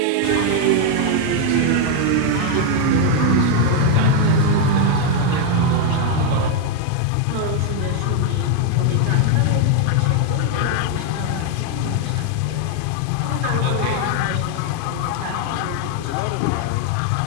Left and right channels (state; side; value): different; both; correlation 0.01